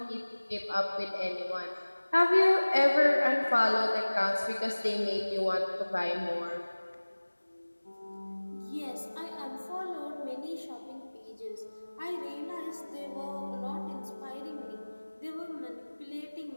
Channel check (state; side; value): inverted; both; correlation -1.00